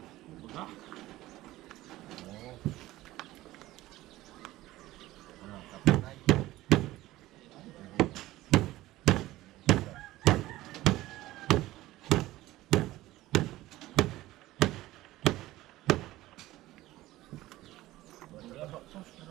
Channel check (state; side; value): quieter; left; 16.7 dB